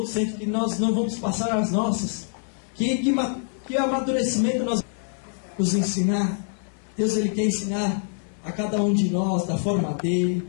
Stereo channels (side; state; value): right; silent; 62 dB below the other